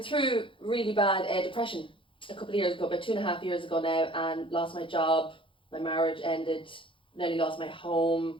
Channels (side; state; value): right; late; 0.25 ms